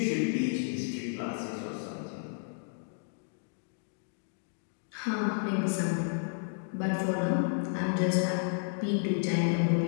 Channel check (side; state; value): right; silent; digital silence